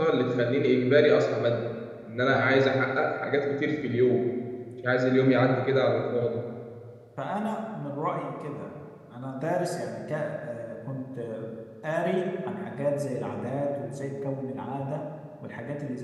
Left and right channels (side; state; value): both; identical; correlation 1.00